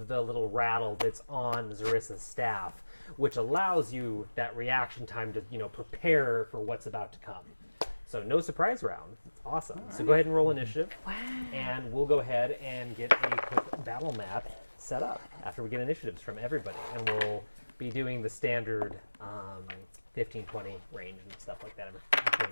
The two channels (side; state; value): both; inverted; correlation -1.00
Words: the little rattle that's on Zarissa's staff, which allows you that reaction time to, prepare for what's about to come. So no surprise round. It's awesome. So go ahead and roll initiative. Wow. And we'll go ahead and get a quick battle map set up after we get initiatives from everybody. And we'll be doing the standard 15, 20 range and stuff like that after